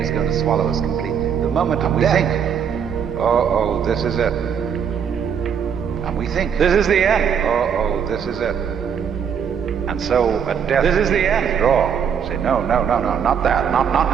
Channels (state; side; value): quieter; left; 7.6 dB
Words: is going to swallow us completely. The moment of death. We think, oh, this is it. And we think, this is the end. Oh, this is it. And so at death, this is the end. Withdraw. Say, no, not that.